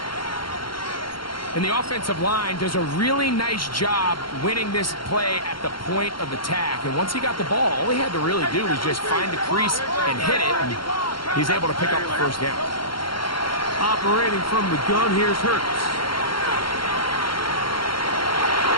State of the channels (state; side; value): late; right; 0.73 ms